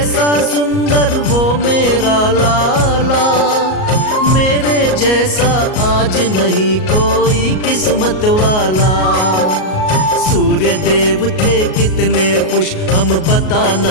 सुंदर वो मेरा लाला, मेरे जैसा आज नहीं कोई किस्मत वाला। सूर्य देव थे कितने खुश हम बता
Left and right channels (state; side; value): late; right; 38 ms